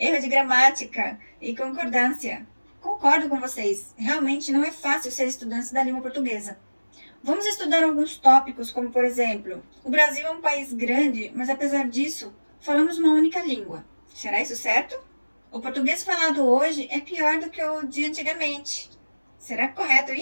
de gramática e concordância. Concordo com vocês, realmente não é fácil ser estudante da língua portuguesa. Vamos estudar alguns tópicos, como por exemplo, o Brasil é um país grande, mas apesar disso, falamos uma única língua. Será isso certo? O português falado hoje é pior do que o de antigamente. Será correto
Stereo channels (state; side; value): inverted; both; correlation -1.00